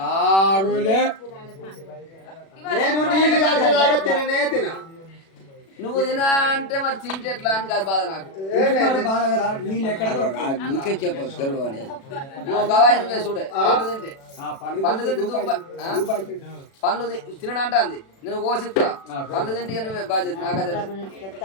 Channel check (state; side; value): late; right; 36 ms